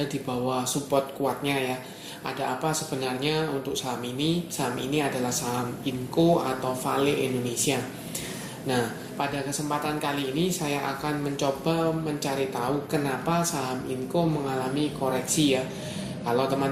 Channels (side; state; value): both; identical; correlation 1.00